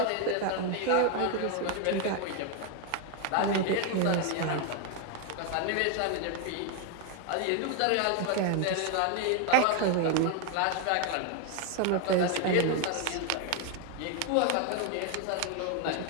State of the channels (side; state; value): both; different; correlation 0.01